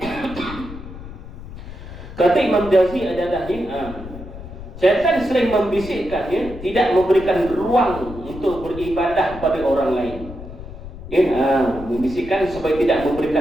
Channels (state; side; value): noise; left; rumble, 13 dB below the sound